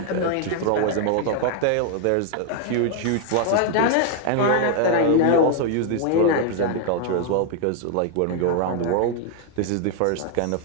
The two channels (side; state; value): both; different; correlation 0.00